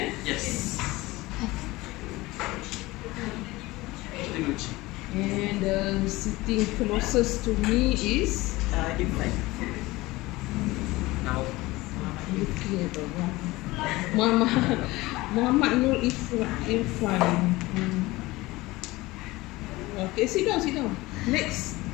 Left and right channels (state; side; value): quieter; right; 20.2 dB